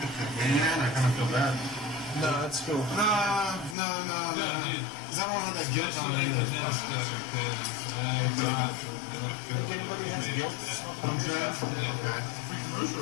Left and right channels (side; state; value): right; drops out; at 3.8 s